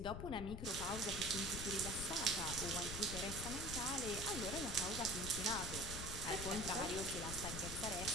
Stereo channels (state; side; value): noise; left; rumble, 6 dB below the sound